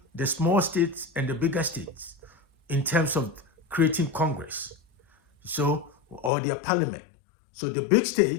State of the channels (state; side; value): drops out; right; at 6.3 s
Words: the small states and the bigger states in terms of creating Congress, or their parliament. So the big